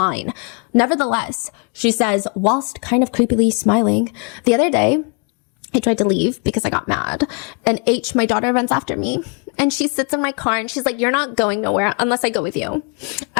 Nevertheless, she says, whilst kind of creepily smiling, "The other day, I tried to leave because I got mad, and H, my daughter, runs after me, and she sits in my car and she's like, 'You're not going nowhere unless I go with you.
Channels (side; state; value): right; quieter; 35.9 dB